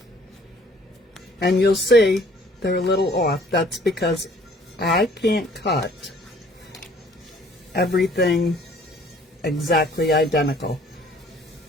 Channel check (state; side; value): normal; both; correlation 0.57